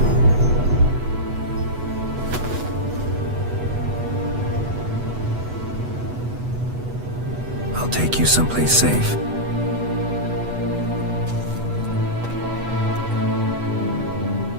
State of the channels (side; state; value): left; late; 8.1 ms